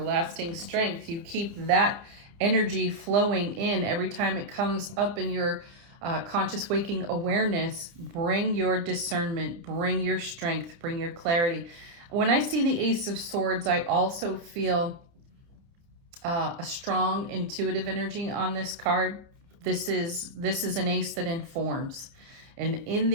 strength. You keep that energy flowing in every time it comes up in your conscious waking awareness. Bring your discernment, bring your strength, bring your clarity. When I see the Ace of Swords, I also feel a strong intuitive energy on this card. This is an ace that informs. And in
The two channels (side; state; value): left; late; 30 ms